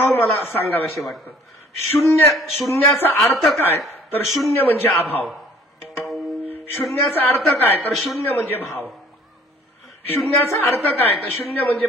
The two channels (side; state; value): both; normal; correlation 0.55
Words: मला सांगावेसे वाटतं. शून्याचा अर्थ काय? तर 0 म्हणजे अभाव. शून्याचा अर्थ काय? तर 0 म्हणजे भाव. शून्याचा अर्थ काय? तर 0 म्हणजे